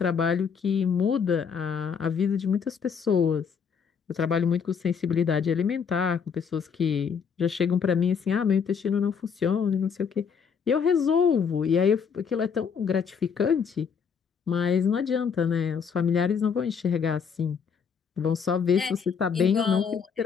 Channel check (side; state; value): right; quieter; 6.5 dB